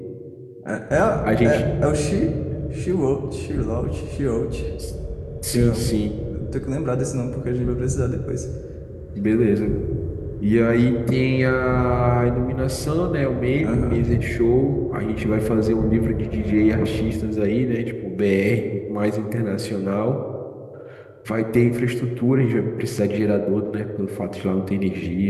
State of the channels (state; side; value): identical; both; correlation 1.00